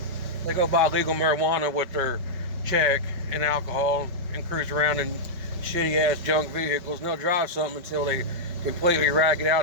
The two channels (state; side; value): late; left; 5.3 ms